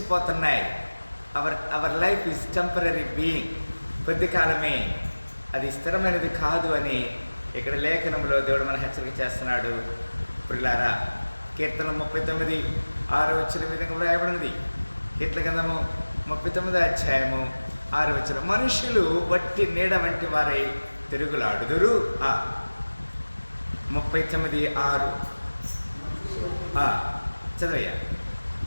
Our life is temporary being. కొద్ది కాలమే, అది స్థిరమైనది కాదు అని ఇక్కడ లేఖనంలో దేవుడు మన హెచ్చరిక చేస్తున్నాడు పిల్లారా. కీర్తన 39:6 వచ్చిన విధంగా వ్రాయబడినది. కీర్తన గ్రంథము 39వ అధ్యాయము 6వ వచనం, మనుషులు వట్టి నీడ వంటి వారై తిరుగులాడుదురు. 39:6 చదవయ్యా.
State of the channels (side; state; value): both; inverted; correlation -1.00